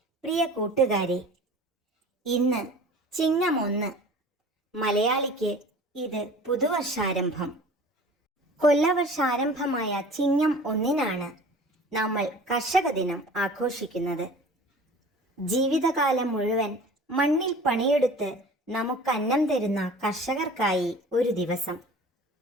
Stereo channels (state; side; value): normal; both; correlation 0.43